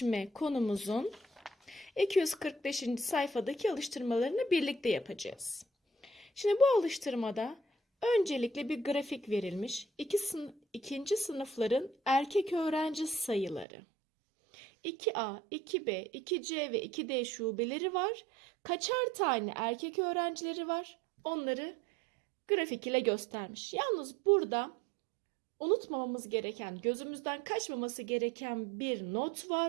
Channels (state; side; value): drops out; left; at 13.7 s